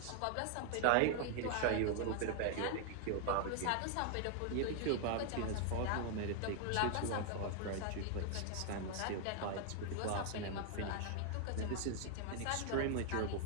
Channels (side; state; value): both; different; correlation 0.00